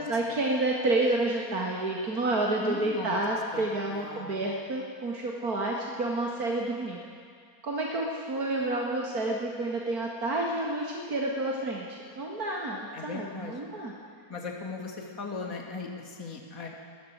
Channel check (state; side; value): late; left; 4.1 ms